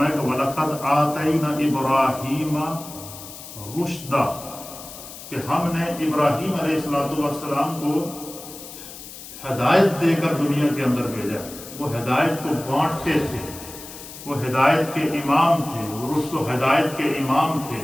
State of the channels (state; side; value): noise; left; hiss, 14 dB below the sound